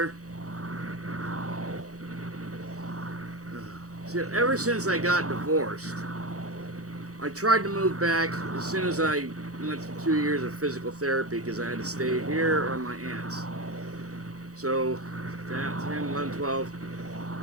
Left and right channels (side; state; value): left; late; 0.66 ms